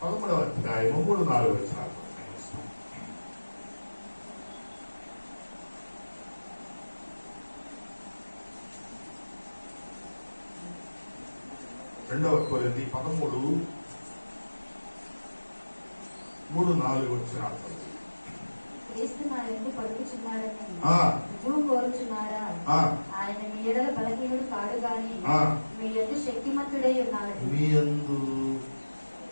11వ అధ్యాయం 3-4 వచనాలు. 2 కొరింథీ 13:3-4 వచనాలు. క్రీస్తు నా యందు పలుకుచున్నాడని రుజువు కోరుచున్నారా? ఆయన మీ ఎడల బలహీనుడు కాడు గాని మీ యందు శక్తిమంతుడై ఉన్నాడు. మీ యందు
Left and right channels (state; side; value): inverted; both; correlation -1.00